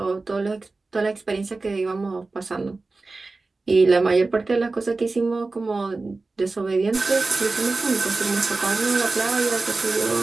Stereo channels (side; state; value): left; quieter; 3.6 dB